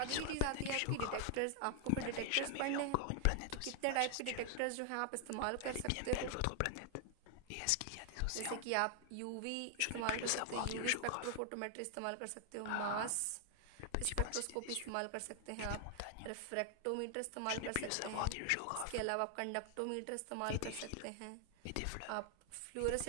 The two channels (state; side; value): different; both; correlation 0.00